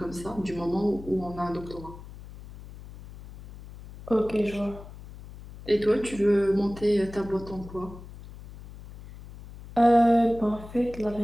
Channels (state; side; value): noise; left; hum, 16 dB below the sound